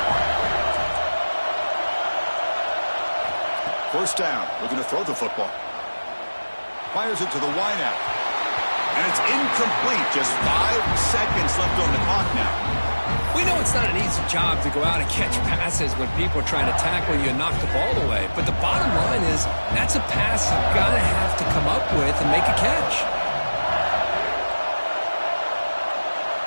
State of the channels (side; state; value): both; inverted; correlation -1.00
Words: First down. Looking to throw the football. Fires it to the wideout. And it's incomplete. Just 5 seconds left on the clock now. We know it's not an easy job to go out and catch passes when people are trying to tackle you and knock the ball away. But the bottom line is that's a pass you've got to have to come up with and make a catch.